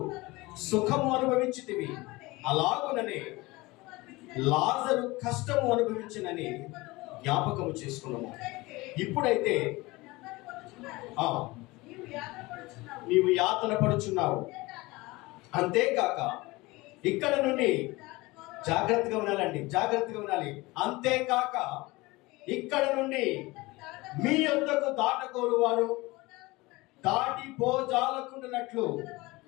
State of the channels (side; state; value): right; quieter; 21.8 dB